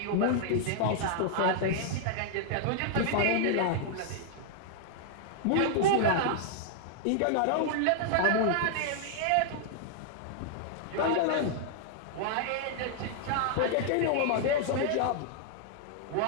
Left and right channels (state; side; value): different; both; correlation -0.01